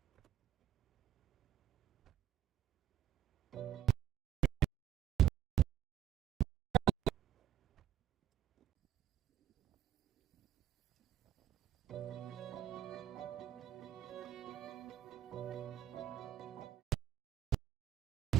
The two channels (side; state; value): left; quieter; 11.1 dB